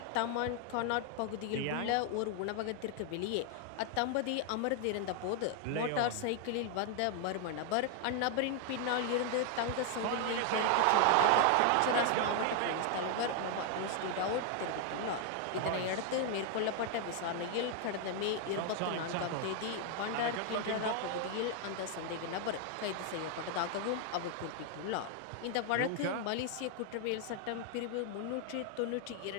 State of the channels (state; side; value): different; both; correlation 0.00